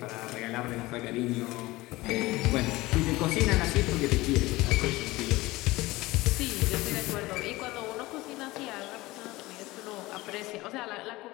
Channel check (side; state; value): right; quieter; 19.8 dB